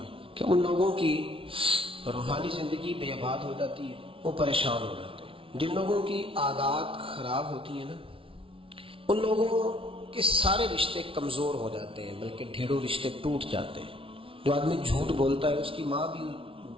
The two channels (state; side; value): late; left; 0.26 ms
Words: ہے کہ ان لوگوں کی روحانی زندگی بے آباد ہو جاتی ہے، وہ پریشان ہو جاتے ہیں۔ جن لوگوں کی عادات خراب ہوتی ہیں نا، ان لوگوں کے سارے رشتے کمزور ہو جاتے ہیں، بلکہ ڈھیروں رشتے ٹوٹ جاتے ہیں۔ جو آدمی جھوٹ بولتا ہے اس کی ماں بھی